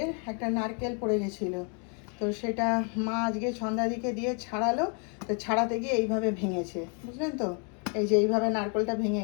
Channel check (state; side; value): quieter; right; 38.5 dB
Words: একটা নারকেল পড়ে গেছিল, তো সেটা মা আজকে সন্ধ্যার দিকে দিয়ে ছাড়ালো। তো ছাড়াতে গিয়ে এইভাবে ভেঙেছে, বুঝলেন তো, এই যে এইভাবে নারকেলটা ভেঙে